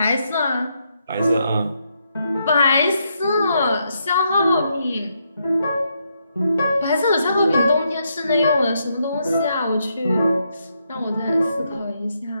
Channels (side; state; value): both; inverted; correlation -0.79